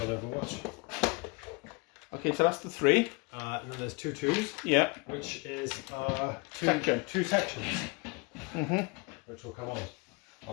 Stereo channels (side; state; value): right; quieter; 28.5 dB